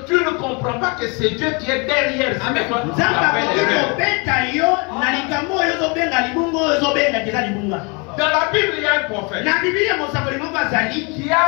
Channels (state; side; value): quieter; right; 31.5 dB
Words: tu ne comprends pas que c'est Dieu qui est derrière. Dans la Bible, il y a un prophète qui